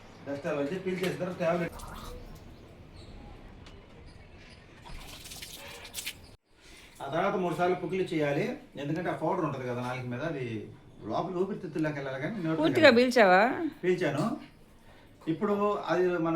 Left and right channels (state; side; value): identical; both; correlation 1.00